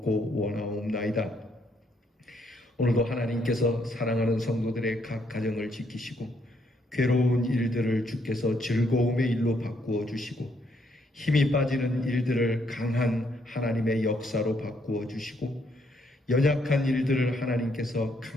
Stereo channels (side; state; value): both; normal; correlation 0.72